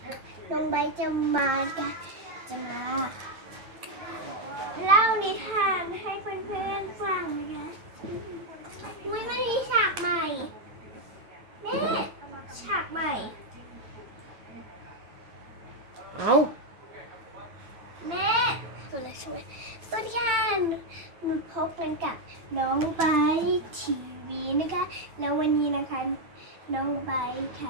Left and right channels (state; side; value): late; left; 9.0 ms